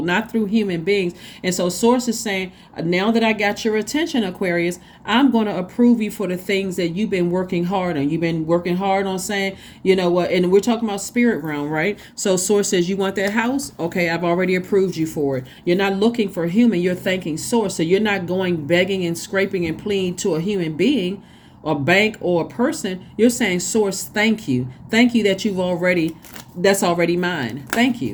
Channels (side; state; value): both; identical; correlation 1.00